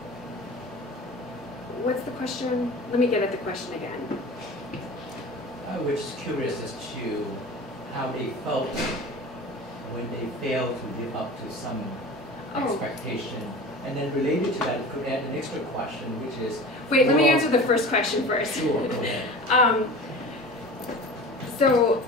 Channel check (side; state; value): both; normal; correlation 0.36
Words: what's the question? Let me get at the question again. I was just curious as to how they felt when they failed to live up to some expectation. And then related to that, it could add an extra question, which is... Wait, let me answer the first question first. Sure, go ahead. So